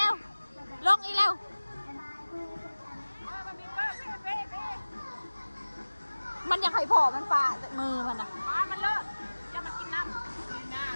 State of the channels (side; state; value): both; inverted; correlation -1.00